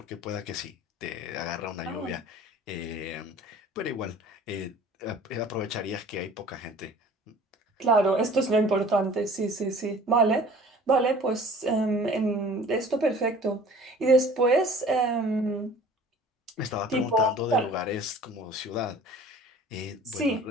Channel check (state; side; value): normal; both; correlation 0.47